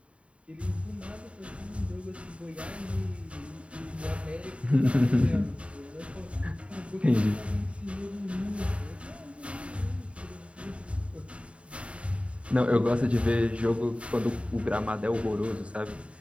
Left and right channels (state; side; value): late; left; 0.061 ms